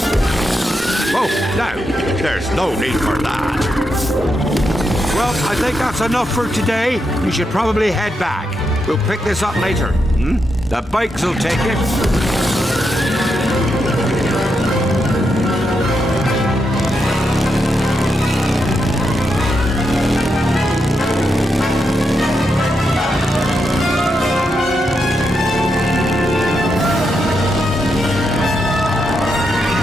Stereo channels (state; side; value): normal; both; correlation 0.83